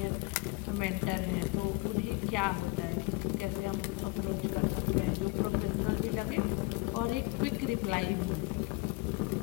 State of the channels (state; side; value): quieter; right; 24.5 dB